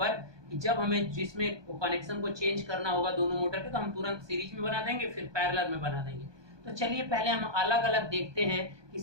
कि जब हमें जिसमें कनेक्शन को चेंज करना होगा दोनों मोटर के, तो हम तुरंत सीरीज में बना देंगे, फिर पैरेलल में बना देंगे। तो चलिए पहले हम अलग अलग देखते हैं कि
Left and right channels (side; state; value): left; late; 1.2 ms